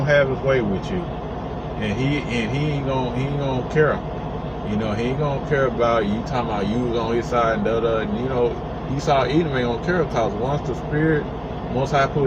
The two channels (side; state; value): both; identical; correlation 1.00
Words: have his way with you, and he ain't gonna care. He ain't gonna care about you talking about you was on his side and Esau Edom ain't gonna care, because once I put